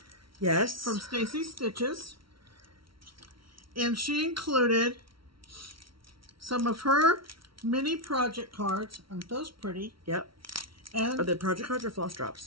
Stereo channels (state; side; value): late; left; 0.74 ms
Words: Yes. From Stacy Stitches. And she included some of her mini project cards. Aren't those pretty? Yep. And Are they project cards or floss